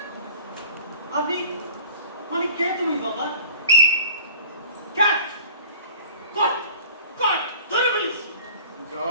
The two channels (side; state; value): both; inverted; correlation -0.45